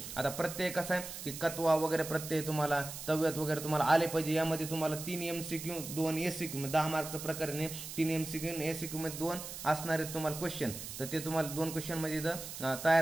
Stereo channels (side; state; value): right; noise; hiss, 9 dB below the sound